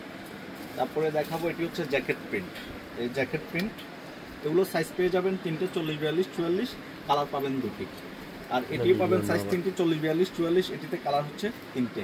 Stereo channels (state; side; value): identical; both; correlation 1.00